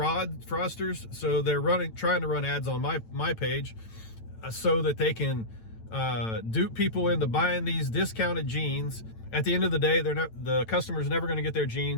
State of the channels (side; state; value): right; late; 9.0 ms